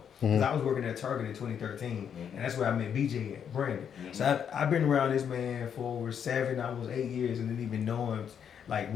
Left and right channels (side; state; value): right; quieter; 8.1 dB